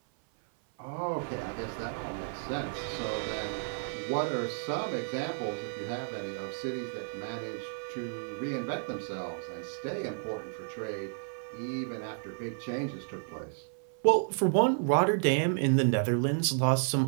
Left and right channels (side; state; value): left; silent; 56 dB below the other